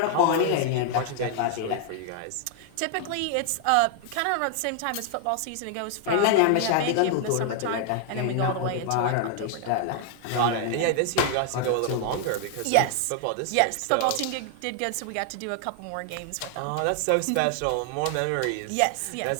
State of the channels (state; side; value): different; both; correlation 0.00